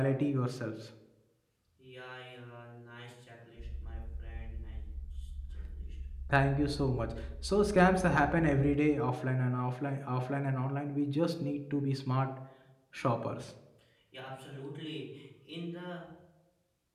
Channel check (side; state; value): both; identical; correlation 1.00